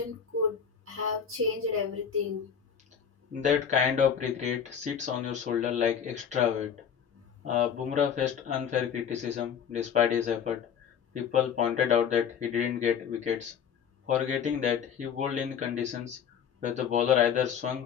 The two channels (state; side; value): quieter; right; 7.7 dB